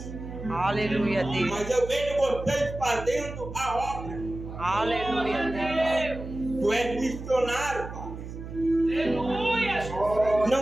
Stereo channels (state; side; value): noise; right; hum, 10 dB below the sound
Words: Aleluia, Deus. Mas eu vejo vocês fazendo a obra. Aleluia, Deus. Tu és missionário, Pai. Aleluia, Jesus.